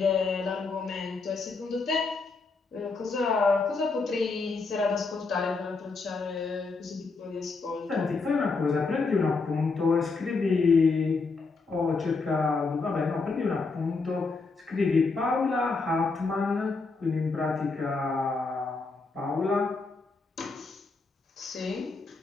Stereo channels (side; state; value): right; quieter; 4.1 dB